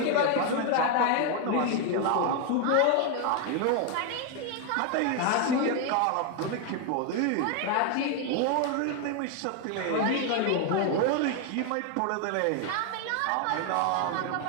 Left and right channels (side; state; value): both; different; correlation 0.01